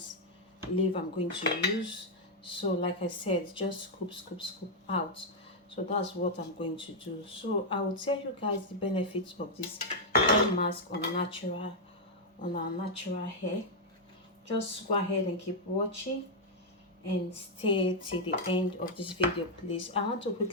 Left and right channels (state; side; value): normal; both; correlation -0.03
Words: leaf I'm going to use. So like I said, just scoop out. So that's what I'm going to do. So I will tell you guys the benefits of this hair mask on our natural hair. Just go ahead and keep watching and stay till the end of this video, please. I want to